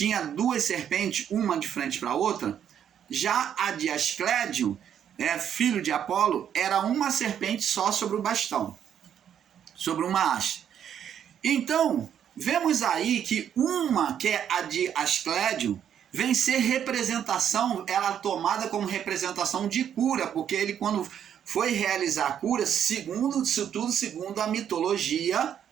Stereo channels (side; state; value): left; quieter; 9.2 dB